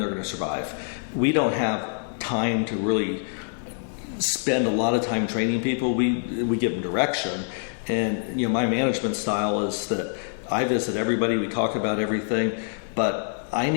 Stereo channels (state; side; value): silent; right; digital silence